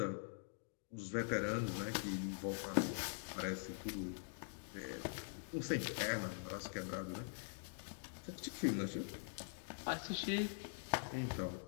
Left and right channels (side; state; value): right; silent; digital silence